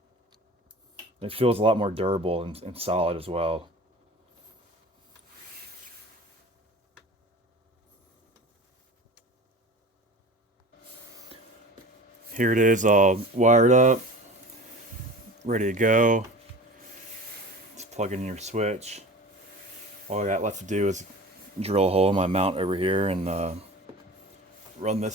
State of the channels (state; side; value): normal; both; correlation 0.38